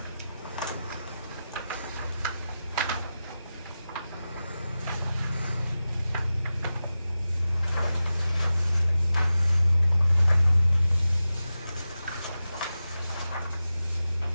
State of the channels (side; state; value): both; inverted; correlation -0.93